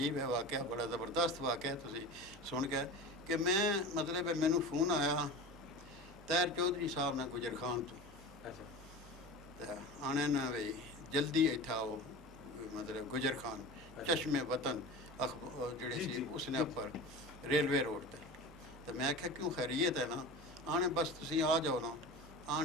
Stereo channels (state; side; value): normal; both; correlation 0.32